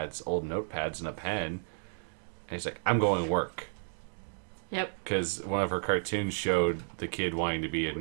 old notepads and a pen, and he's like, "I'm going to work." Yep. Because one of her cartoons showed the kid wanting to be a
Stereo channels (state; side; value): silent; left; digital silence